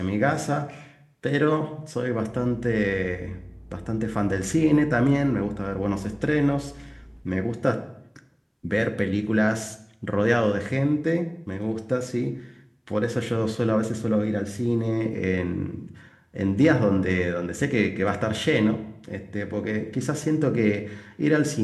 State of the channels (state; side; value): identical; both; correlation 1.00